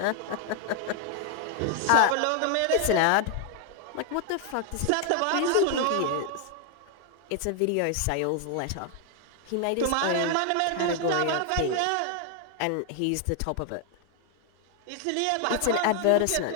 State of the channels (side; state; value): both; different; correlation 0.00